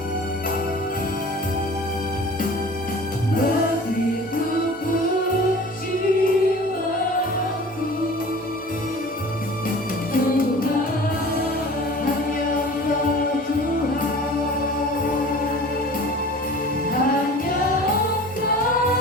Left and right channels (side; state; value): both; normal; correlation 0.42